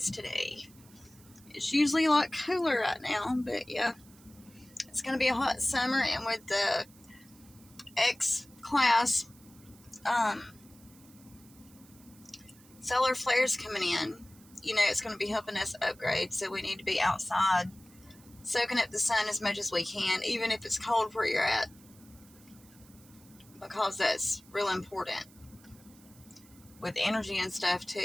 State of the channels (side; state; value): right; noise; hiss, 25 dB below the sound